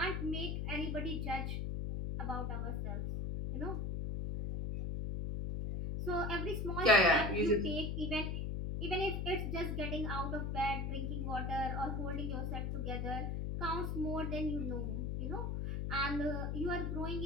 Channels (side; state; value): left; noise; hum, 1 dB below the sound